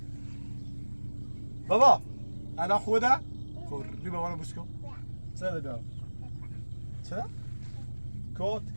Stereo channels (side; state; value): both; inverted; correlation -1.00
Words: بابا، الان خوبه ده؟ خب، بی بابا رو بوس کن. چرا بیا؟ چرا؟ کت